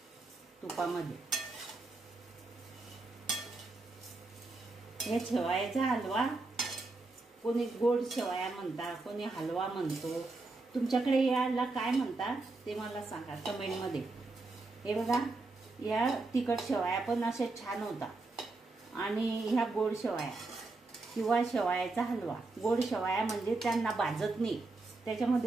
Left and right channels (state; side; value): quieter; left; 3.4 dB